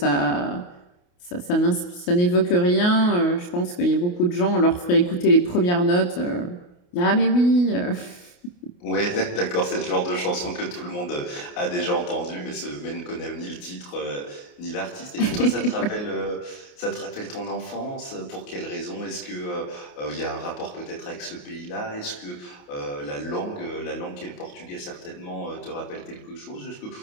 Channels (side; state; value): right; late; 28 ms